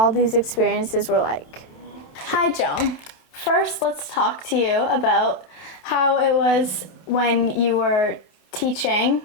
these experiences were like. Hi Joan. First, let's talk to you about how it was when you were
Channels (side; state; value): right; late; 27 ms